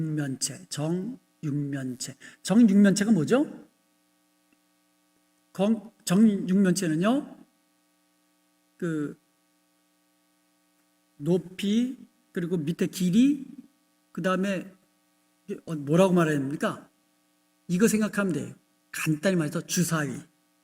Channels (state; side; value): identical; both; correlation 1.00